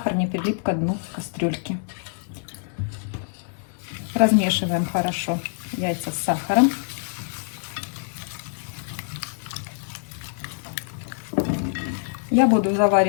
не прилип к дну кастрюльки. Размешиваем хорошо яйца с сахаром. Я буду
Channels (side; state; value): right; silent; digital silence